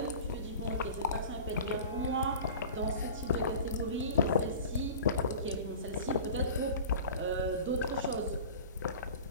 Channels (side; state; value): both; inverted; correlation -0.38